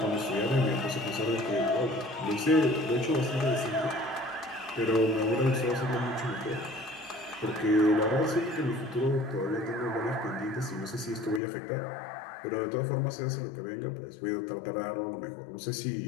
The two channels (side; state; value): right; drops out; at 11.4 s